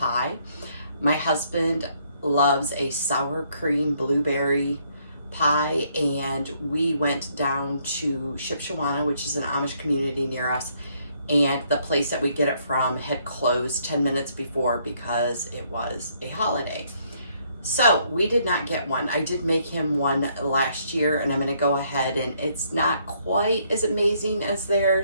My husband loves a sour cream blueberry pie, and we went down to Shipshewana, which is an Amish community near us, and the place that we get it from had closed 10 minutes before because it was a holiday. So we did not get one. I did make him one last year, and I'm going to go ahead, and it's not quite as amazing as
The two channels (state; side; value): inverted; both; correlation -0.69